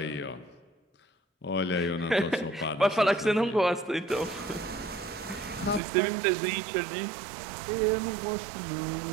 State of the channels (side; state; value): left; drops out; at 5.8 s